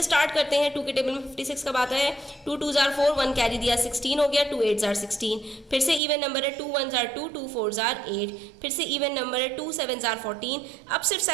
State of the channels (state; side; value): drops out; left; at 6.0 s